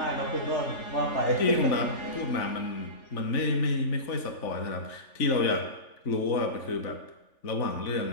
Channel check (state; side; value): late; right; 3.5 ms